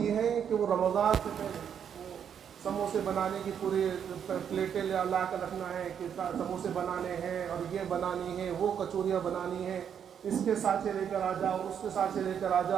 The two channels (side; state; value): left; quieter; 8.2 dB